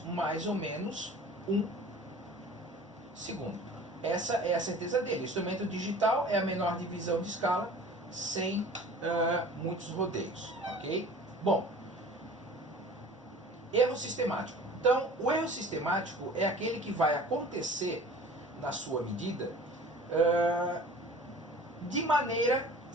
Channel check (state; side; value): normal; both; correlation 0.44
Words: mais ou menos 1 segundo. Essa é a certeza dele. O instrumento digital é a menor divisão de escala, sem muitos rodeios, ok? Bom, erro sistemático. Então, o erro sistemático é aquele que vai acontecer na sua medida de maneira